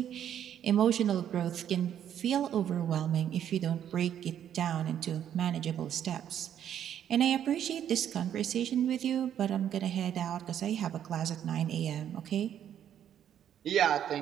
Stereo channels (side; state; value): left; quieter; 9.9 dB